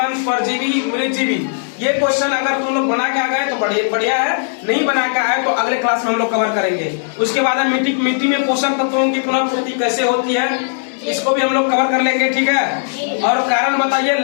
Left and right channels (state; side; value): silent; right; digital silence